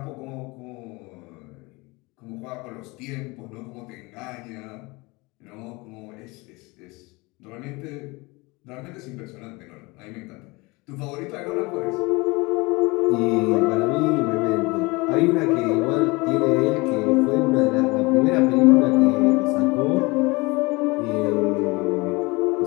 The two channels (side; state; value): right; quieter; 24.8 dB